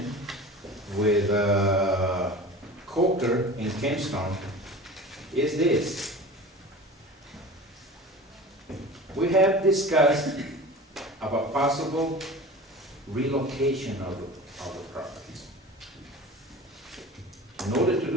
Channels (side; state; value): both; normal; correlation 0.37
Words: with Coker in Kempstone is this. We have discussed about possible relocation of the properties. In order to